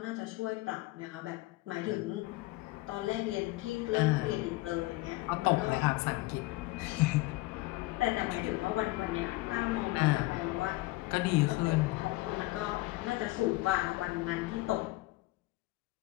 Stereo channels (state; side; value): quieter; right; 20.4 dB